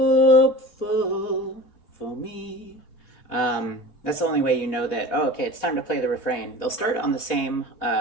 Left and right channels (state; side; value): late; right; 3.2 ms